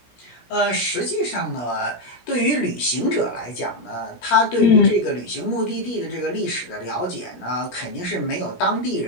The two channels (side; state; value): right; late; 17 ms